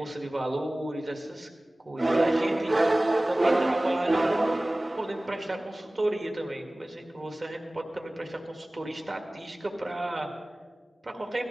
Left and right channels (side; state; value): both; normal; correlation 0.98